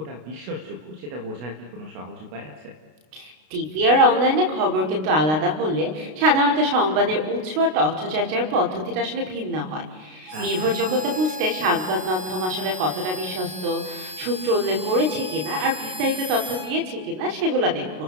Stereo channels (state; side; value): late; left; 32 ms